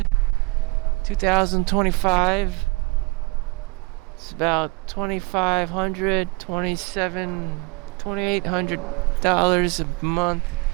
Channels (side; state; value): left; quieter; 26.8 dB